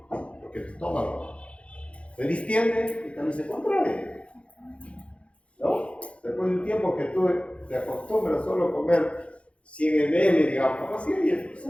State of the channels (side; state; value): right; late; 0.061 ms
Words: porque el estómago se distiende y también se contrae, ¿no? Después de un tiempo que tú te acostumbras solo a comer 100 ml, digamos, así, y se